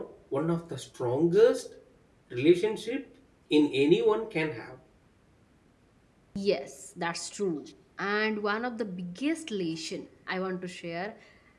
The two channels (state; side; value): identical; both; correlation 1.00